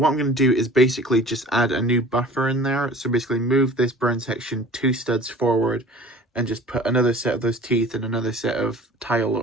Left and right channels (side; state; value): both; normal; correlation 0.44